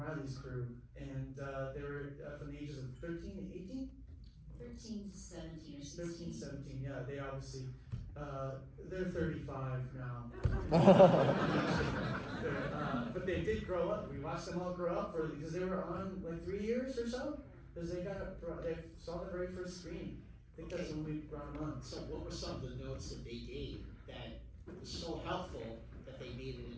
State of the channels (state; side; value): identical; both; correlation 1.00